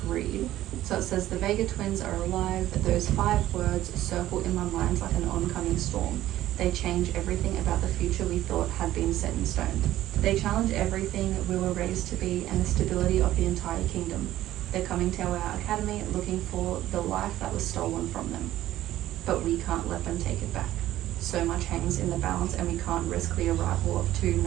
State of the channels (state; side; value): quieter; left; 14.1 dB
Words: read. So it says, the Vega twins are alive. Those 5 words circle in my mind like an oncoming storm. They change everything about the future we thought had been set in stone. They challenge everything we were raised to be and the stability of the entire kingdom. They're coming to our academy looking for the life that was stolen from them. But we can't let them take it back. So much hangs in the balance, and we can't risk the arrival of two